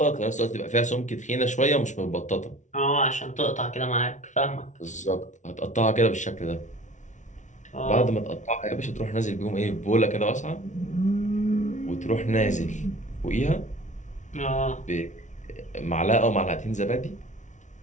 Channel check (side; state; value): right; late; 0.36 ms